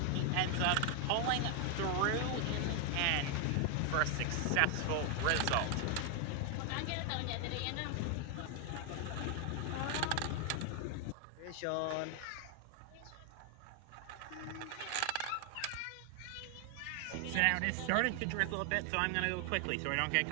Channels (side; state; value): both; different; correlation 0.01